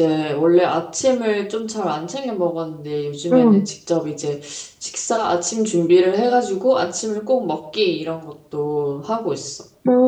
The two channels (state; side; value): identical; both; correlation 1.00